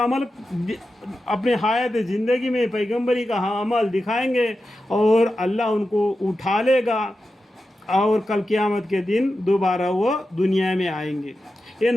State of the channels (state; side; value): normal; both; correlation 0.91